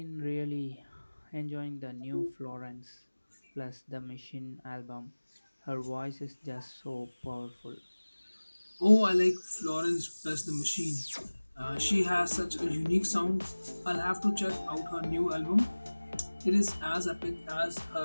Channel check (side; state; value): both; inverted; correlation -1.00